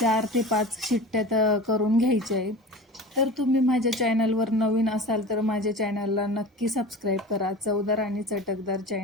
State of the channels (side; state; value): both; normal; correlation 0.34